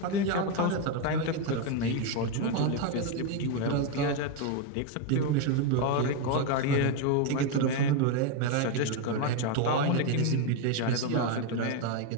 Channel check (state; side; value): different; both; correlation 0.02